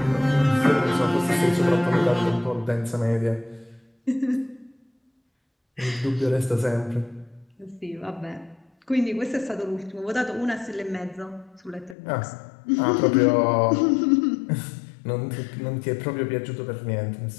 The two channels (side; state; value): right; drops out; at 12.0 s